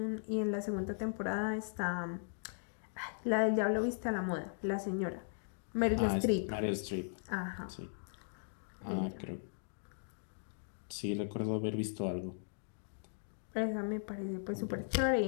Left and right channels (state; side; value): silent; right; digital silence